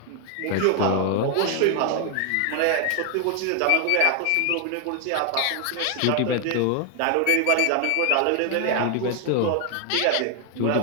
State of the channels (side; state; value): both; different; correlation 0.00